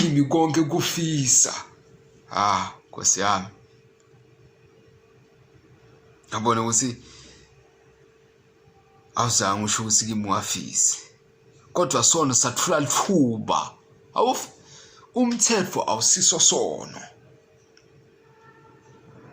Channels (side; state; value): both; identical; correlation 1.00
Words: konke kufisa. Nkosi yami, yabona ukuthi awuzange usho ukuthi kimi ungafisi, kodwa sona sathula lithuba. Umthetho awusiso sono,